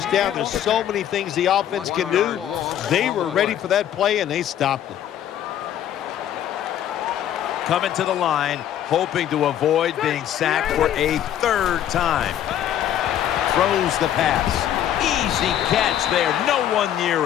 down. There's so many things the offense can do. They were ready for that play, and they stopped it. Coming to the line, hoping to avoid being sacked for a third time. Throws the pass. Easy catch there. No one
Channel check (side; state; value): right; quieter; 10.9 dB